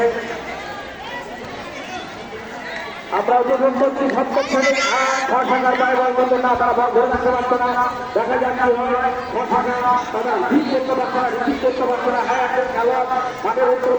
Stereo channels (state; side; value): identical; both; correlation 1.00